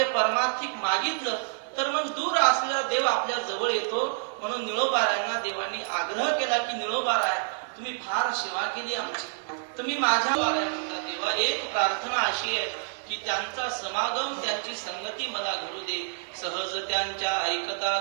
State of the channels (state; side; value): silent; left; digital silence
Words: परमार्थिक मागितलं तर मग दूर असलेला देव आपल्या जवळ येतो. म्हणून निळोबारायांना देवानी आग्रह केला की निळोबाराय तुम्ही फार सेवा केली आमची, तुम्ही माझ्या बाराय म्हणता. देवा एक प्रार्थना अशी आहे की त्यांचा समागम, त्यांची संगती मला घडू दे. सहज त्यांच्या ऐकता